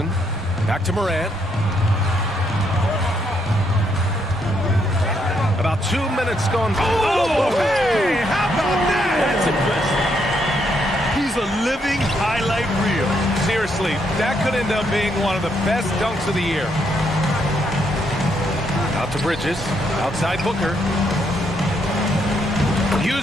Back to Morant. About 2 minutes gone. Oh, hey, how about that? That's impressive. He's a living highlight reel. Seriously, that could end up being one of the best dunks of the year. Out to Bridges. Outside Booker.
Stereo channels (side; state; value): both; normal; correlation 0.75